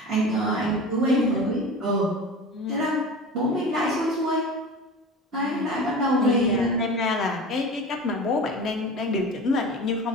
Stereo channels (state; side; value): normal; both; correlation 0.33